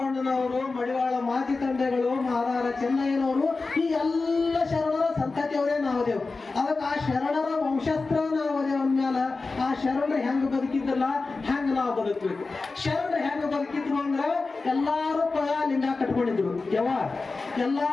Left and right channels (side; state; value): right; quieter; 3.9 dB